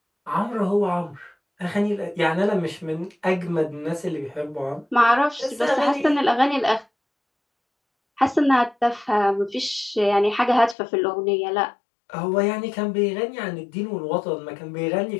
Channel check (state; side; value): drops out; right; at 10.8 s